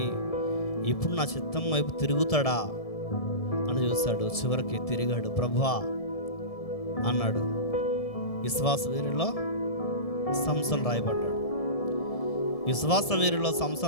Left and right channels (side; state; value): right; late; 1.7 ms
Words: ఇప్పుడు నా చిత్తం వైపు తిరుగుతాడా అని చూశాడు. చివరికి తిరిగాడు. ప్రభువా అన్నాడు. విశ్వాస వీరులో సంసోను రాయబడ్డాడు. విశ్వాస వీరులో